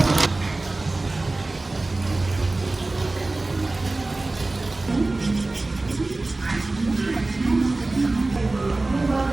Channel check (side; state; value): left; quieter; 3.1 dB